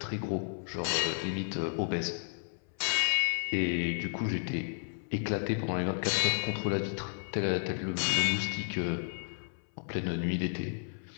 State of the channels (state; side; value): silent; right; 56 dB below the other